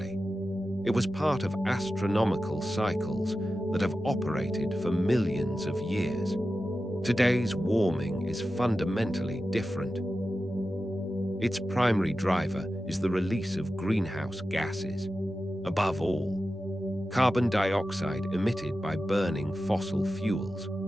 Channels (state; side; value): normal; both; correlation 0.93